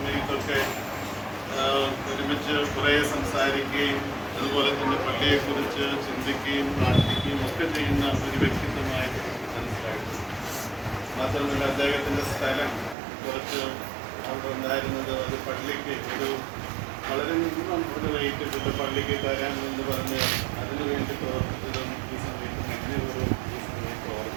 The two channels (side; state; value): left; drops out; at 13.0 s